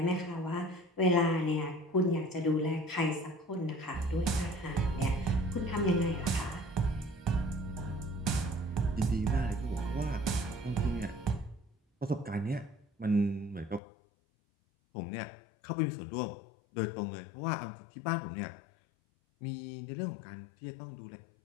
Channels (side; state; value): right; drops out; at 13.8 s